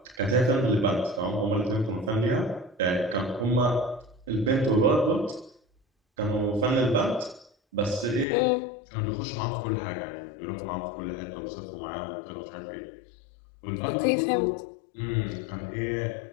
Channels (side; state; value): right; drops out; at 8.2 s